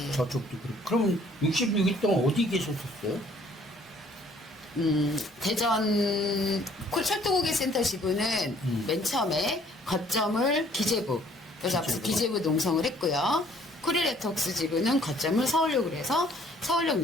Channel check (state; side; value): normal; both; correlation 0.59